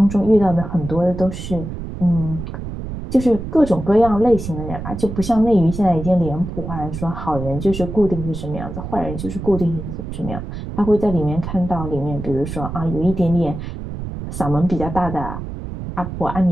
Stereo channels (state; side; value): noise; right; rumble, 8 dB below the sound